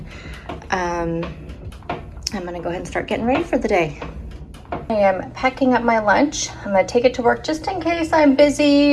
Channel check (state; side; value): identical; both; correlation 1.00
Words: I'm gonna go ahead and start getting ready for the day. I am packing up my lunch. I'm gonna take it to work just in case I'm